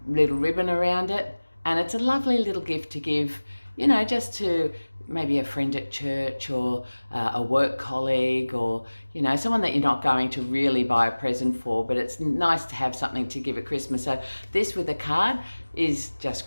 little ribbon around it, and it's a lovely little gift to give, you know, just to maybe a friend at church or a work colleague, or you know, someone that you're not going to really buy a present for, but it's nice to have something to give at Christmas. So this with a card is just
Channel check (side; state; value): both; inverted; correlation -1.00